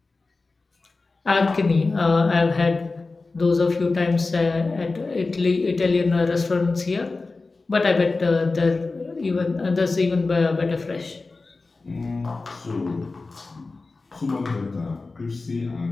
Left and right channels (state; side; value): quieter; right; 3.7 dB